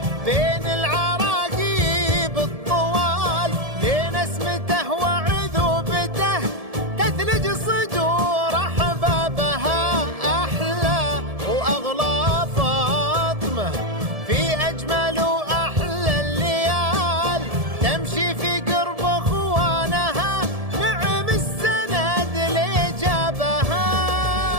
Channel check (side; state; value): left; late; 1.7 ms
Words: بين العراقيب الطوال لين اسمته وعذوبته تثلج صدور احبابها. احلى واغلى فاطمه في اجمل واحلى الليال تمشي في قرب اخوانها نعم السند اللي جابها.